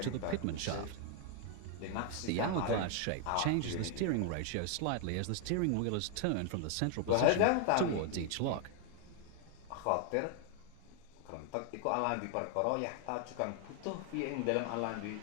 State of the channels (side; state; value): both; different; correlation 0.00